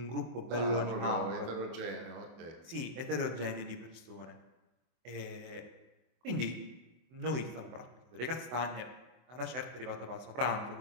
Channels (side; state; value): left; late; 24 ms